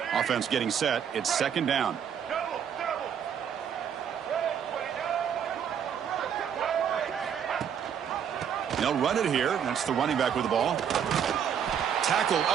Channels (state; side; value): quieter; left; 8.2 dB